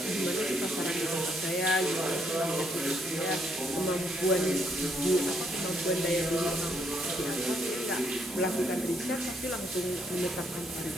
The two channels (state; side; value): normal; both; correlation 0.72